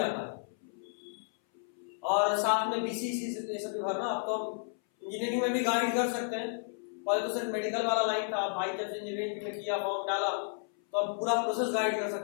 है। और साथ में बीसीसी ये सब भी भरना, अब तो इंजीनियरिंग में भी गाइड कर सकते हैं। पहले तो सिर्फ मेडिकल वाला लाइन था, भाई जब से इंजीनियरिंग में किया फॉर्म डाला तो अब पूरा प्रोसेस गाइड कर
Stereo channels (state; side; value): silent; right; 56 dB below the other